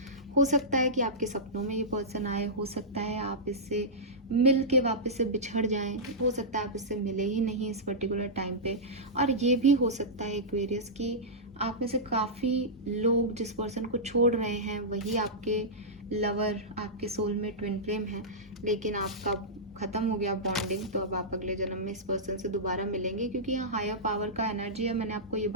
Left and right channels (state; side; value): normal; both; correlation -0.13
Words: हो सकता है कि आपके सपनों में ये पर्सन आए, हो सकता है आप इससे मिल के वापस से बिछड़ जाएं, हो सकता है आप इससे मिले ही नहीं इस पर्टिकुलर टाइम पे, और ये भी हो सकता है एक्वेरियस कि आप में से काफ़ी लोग जिस पर्सन को छोड़ रहे हैं वही आपके लवर, आपके सोलमेट, ट्विन फ्लेम है, लेकिन आपका खत्म हो गया बॉन्डिंग, तो अब आप अगले जन्म में इस पर्सन से दोबारा मिलेंगे, क्योंकि यहाँ हायर पावर का एनर्जी है। मैंने आपको ये